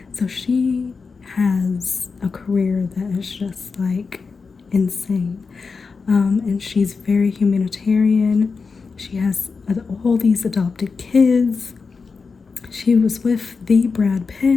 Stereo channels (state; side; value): quieter; right; 4.8 dB